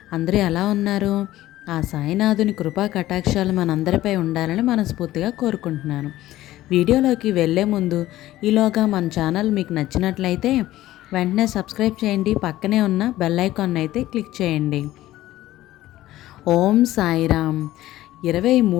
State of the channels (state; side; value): quieter; right; 15.3 dB